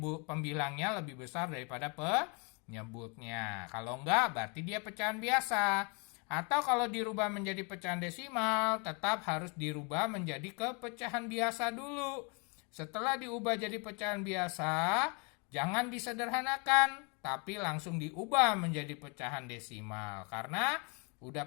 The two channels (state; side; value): quieter; right; 33.1 dB